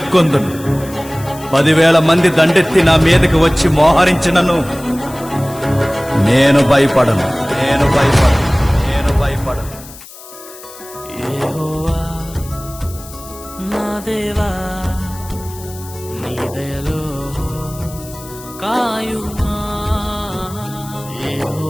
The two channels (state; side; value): noise; left; hiss, 17 dB below the sound